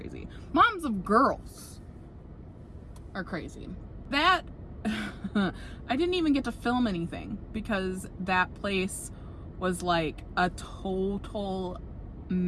Moms of girls are crazy. That, I didn't even get to film anything because that place was like a total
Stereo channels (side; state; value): both; identical; correlation 1.00